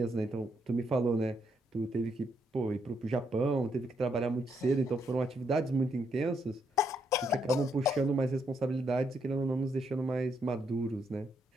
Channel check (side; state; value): both; normal; correlation 0.76